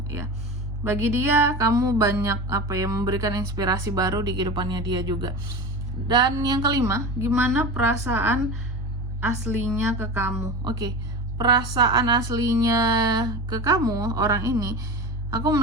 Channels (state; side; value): normal; both; correlation 0.29